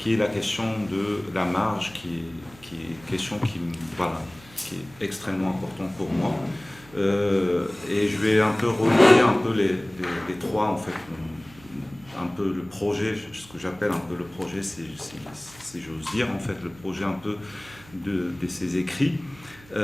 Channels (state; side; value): noise; right; hum, 23 dB below the sound